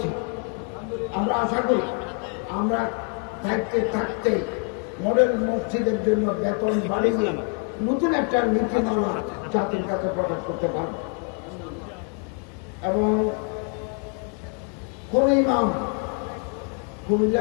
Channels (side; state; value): right; quieter; 37.9 dB